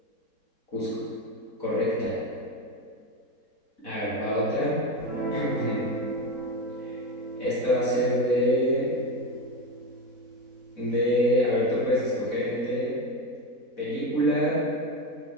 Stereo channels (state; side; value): late; right; 4.1 ms